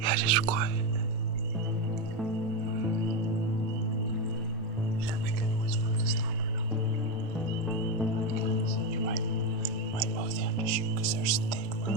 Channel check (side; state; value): both; normal; correlation 0.10